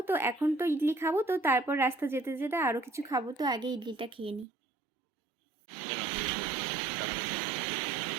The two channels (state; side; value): drops out; left; at 4.5 s